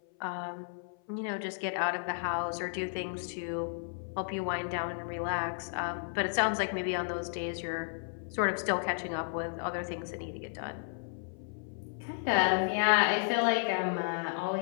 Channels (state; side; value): silent; right; 56 dB below the other